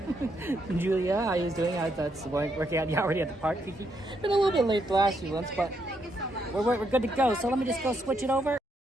Julia, how are you doing? That's working out. You already at the park, Kiki. Been a little bit late the last few months, but we're good to go. So let me just go switch it over.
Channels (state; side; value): normal; both; correlation 0.77